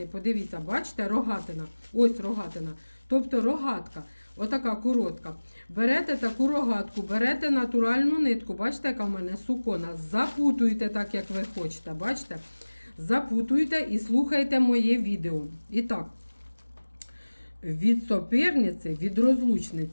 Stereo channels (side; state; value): both; inverted; correlation -1.00